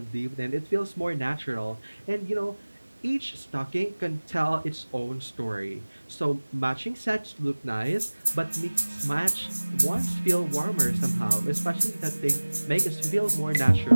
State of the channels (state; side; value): inverted; both; correlation -1.00